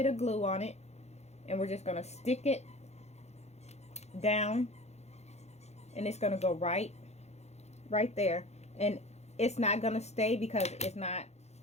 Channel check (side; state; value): right; late; 0.31 ms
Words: of glue on it, and we're just going to stick it down, and it's going to go right there. And it's not going to stay because it's not,